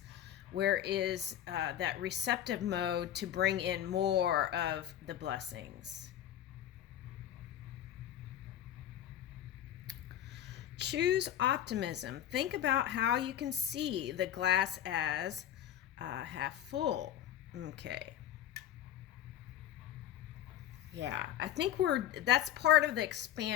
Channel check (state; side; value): quieter; right; 11.2 dB